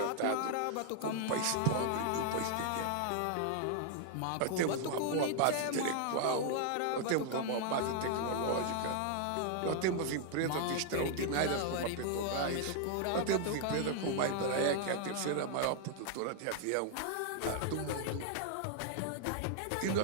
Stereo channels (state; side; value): different; both; correlation 0.00